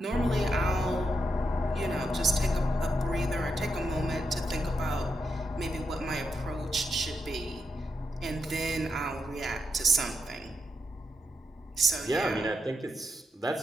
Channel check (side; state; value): both; normal; correlation 0.83